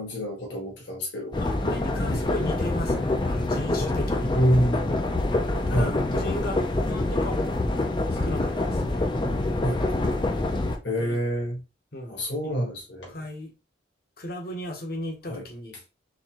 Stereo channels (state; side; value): normal; both; correlation 0.76